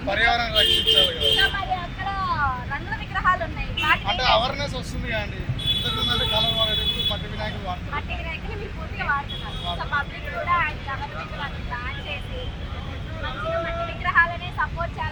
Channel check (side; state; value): both; identical; correlation 1.00